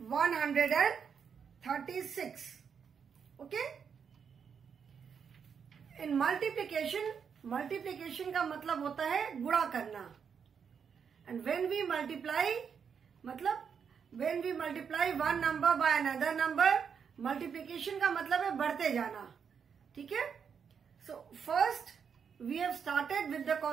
Okay? In multiplication का मतलब होता है गुणा करना. And when we multiply one number by another number, multiplication का मतलब है बढ़ते जाना. ठीक है? So first we have started with the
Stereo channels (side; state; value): left; quieter; 6.8 dB